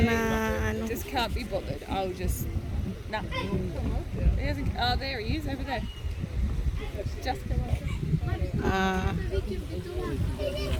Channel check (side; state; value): both; identical; correlation 1.00